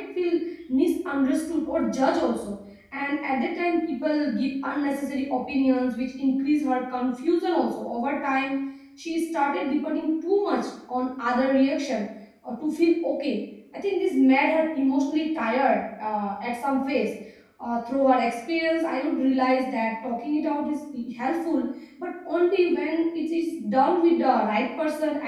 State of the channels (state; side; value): identical; both; correlation 1.00